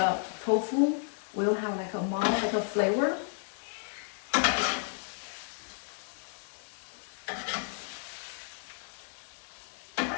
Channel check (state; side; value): silent; right; 56 dB below the other